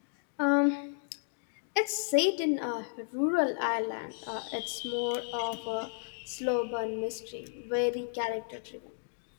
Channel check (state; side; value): silent; right; digital silence